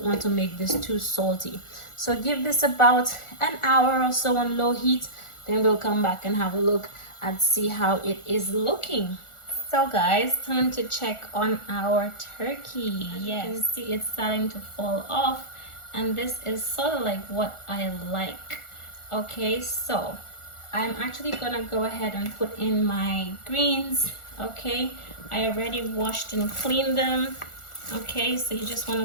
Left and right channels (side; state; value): right; late; 1.4 ms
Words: want to make this too salty. So give this about an hour or so on low heat, then we'll come back and have a look and see how it is looking. So guys, time to check on our turkey. Yes, you can see it's starting to fall off, and this is sort of like what I like. Okay, so I'm actually gonna go ahead and put in my greens. Okay, I already washed and cleaned them. Okay, so you just want